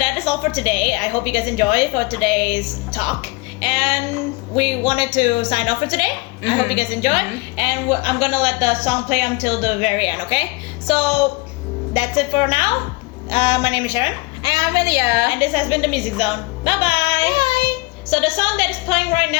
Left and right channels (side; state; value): right; quieter; 25.3 dB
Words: is all for today. I hope you guys enjoy for today's talk. And we wanted to sign off for today. I hope you guys enjoy. And I'm gonna let the song play until the very end, okay? So that's it for now. My name is Sharon. And I'm Amelia. And this has been the Music Zone. Bye-bye. Bye. So the song that is playing right